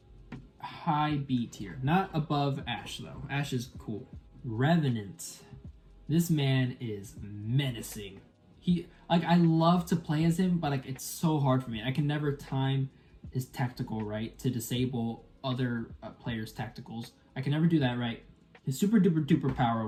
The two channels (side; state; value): both; identical; correlation 1.00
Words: high B tier, not above Ash though. Ash is cool. Revenant. This man is menacing. I love to play as him, but like it's so hard for me. I can never time his tactical right to disable other players' tacticals. I can never do that right. His super duper duper power,